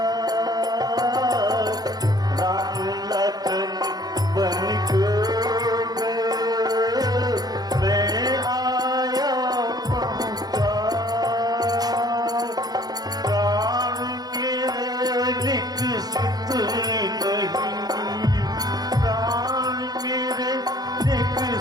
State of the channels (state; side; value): late; left; 0.19 ms